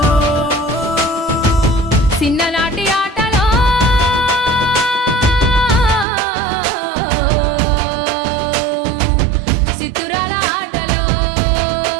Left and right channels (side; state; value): left; drops out; at 6.1 s